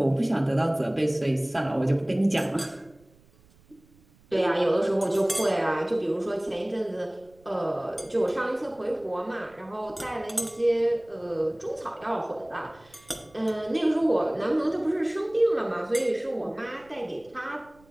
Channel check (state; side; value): noise; right; rumble, 29 dB below the sound